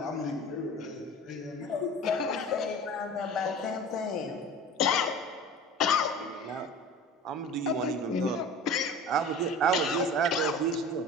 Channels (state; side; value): normal; both; correlation 0.37